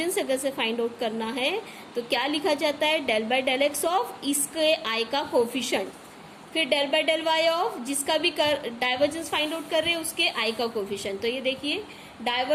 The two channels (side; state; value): both; identical; correlation 1.00